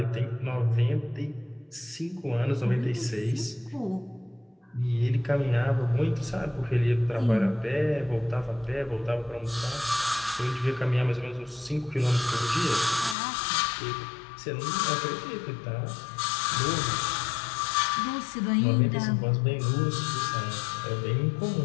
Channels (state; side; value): drops out; right; at 13.2 s